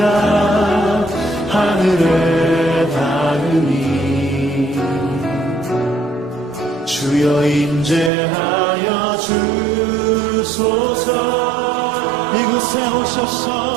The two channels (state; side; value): drops out; left; at 8.1 s